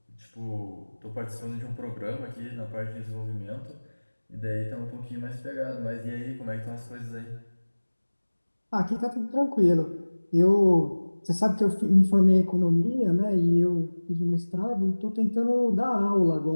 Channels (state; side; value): inverted; both; correlation -1.00